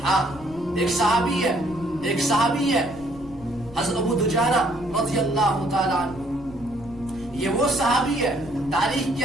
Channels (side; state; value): right; noise; rumble, 19 dB below the sound